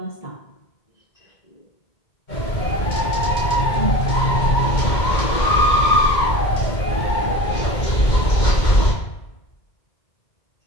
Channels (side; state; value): right; late; 2.1 ms